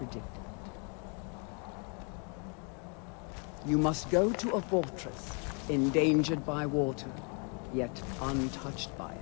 You must go to a fortress, endangered by water, yet untouched by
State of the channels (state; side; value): quieter; right; 37.3 dB